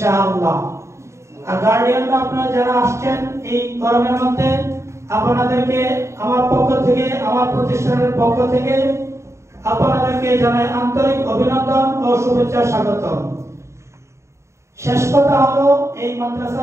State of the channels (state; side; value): late; left; 0.14 ms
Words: আর গার্ডিয়ানরা আপনারা যারা আসছেন এই গরমের মধ্যে, আপনাদেরকে আমার পক্ষ থেকে, আমার প্রতিষ্ঠানের পক্ষ থেকে আপনাদেরকে জানাই আন্তরিক অভিনন্দন ও শুভেচ্ছা, স্বাগতম। শেষ কথা হলো, এই